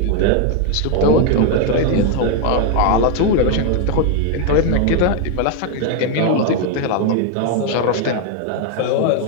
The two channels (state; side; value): different; both; correlation 0.01